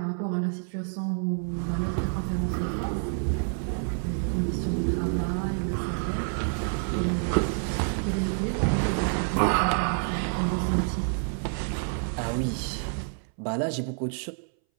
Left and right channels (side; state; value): left; silent; 59 dB below the other